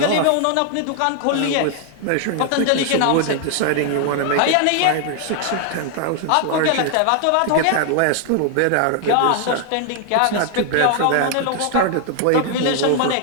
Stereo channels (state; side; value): different; both; correlation 0.00